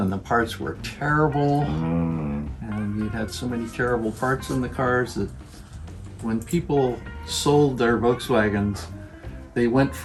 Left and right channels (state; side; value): identical; both; correlation 1.00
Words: the parts were terrible. And you had so many terrible parts in the cars that when people sold their Volkswagens, they went